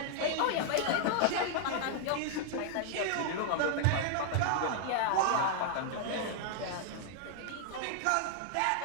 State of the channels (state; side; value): different; both; correlation -0.01